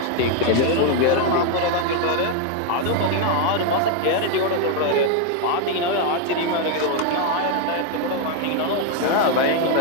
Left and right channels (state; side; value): different; both; correlation 0.01